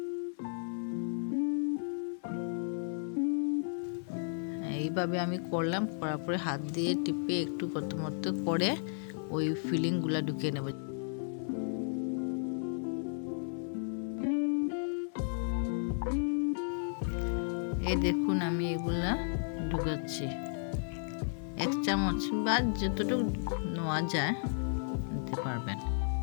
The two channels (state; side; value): silent; right; 55 dB below the other